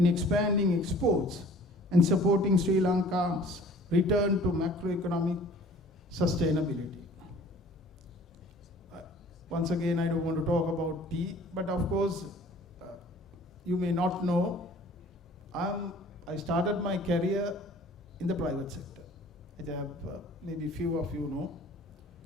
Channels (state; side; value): normal; both; correlation 0.50